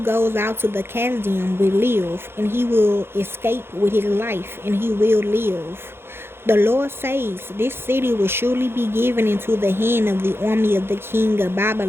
goes out to the Chaldean will live, and he will escape with his life, and he will live. The Lord says, This city will surely be given into the hand of the army of the king of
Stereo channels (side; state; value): left; late; 0.11 ms